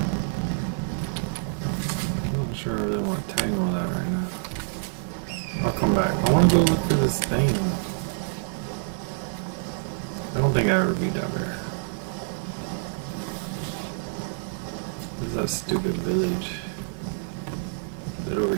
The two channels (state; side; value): silent; left; 60 dB below the other